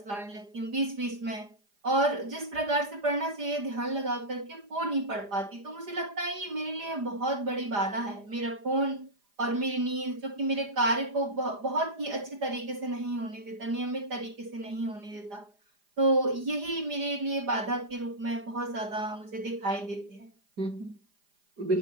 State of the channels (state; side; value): late; left; 4.9 ms